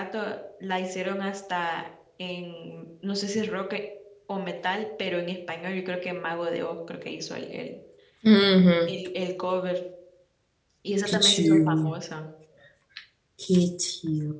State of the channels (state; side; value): identical; both; correlation 1.00